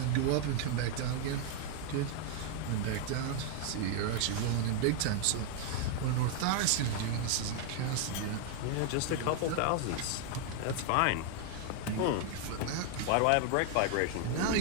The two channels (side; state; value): both; different; correlation 0.00